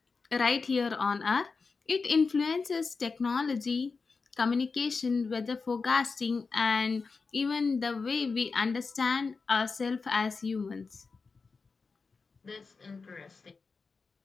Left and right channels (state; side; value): quieter; right; 4.6 dB